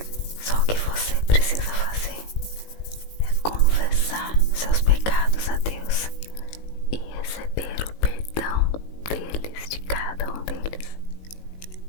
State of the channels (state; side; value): late; right; 18 ms